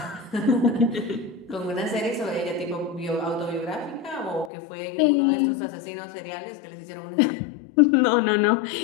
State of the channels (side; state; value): right; drops out; at 4.5 s